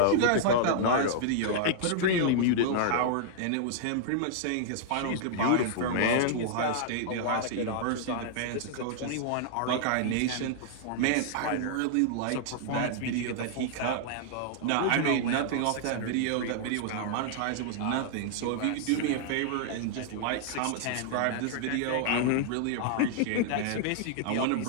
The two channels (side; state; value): both; different; correlation -0.01